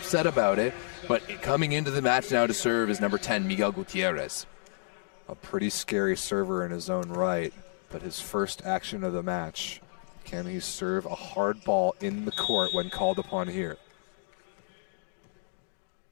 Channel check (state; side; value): silent; right; 57 dB below the other